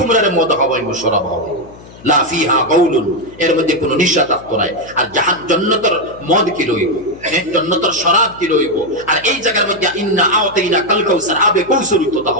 মদ খাওয়াইমু, শরাব খাওয়াইমু, লা ফিহা গাউলুন, এর মধ্যে কোনো নিশা থাকতো নাই। আর জান্নাতের মদ কি লইব, জান্নাতের শরাব কি লইব। আর এই জায়গার মধ্যে ইন্না আওতাইনা কাল কাউসার, আবে কৌসরিত তা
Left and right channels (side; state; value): left; noise; hum, 20 dB below the sound